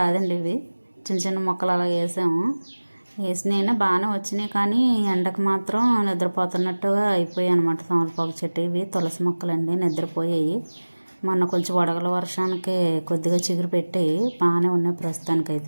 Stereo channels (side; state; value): both; inverted; correlation -1.00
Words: ఇవి చిన్న చిన్న మొక్కలు అలా వేసాము. వేసినైనా బాగానే వచ్చినాయి, కానీ ఎండకు మాత్రం నిద్రపోతున్నట్టుగా అయిపోయాయి అనమాట. తమలపాకు చెట్టు ఇవి తులసి మొక్కలండి, నిద్రపోయాయి. మొన్న కొంచెం వడగల వర్షానికి కొద్దిగా చిగురు పెట్టాయి, బాగానే ఉన్నాయి